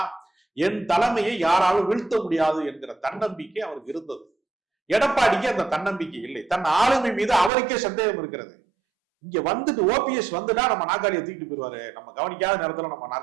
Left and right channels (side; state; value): left; drops out; at 7.5 s